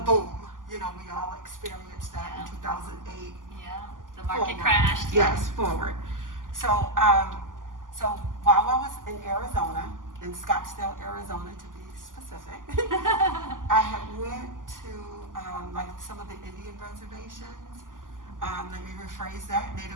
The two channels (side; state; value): left; late; 0.88 ms